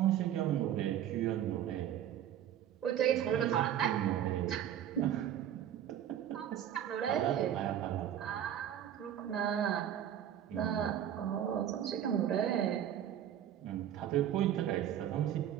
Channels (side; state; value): left; quieter; 10.5 dB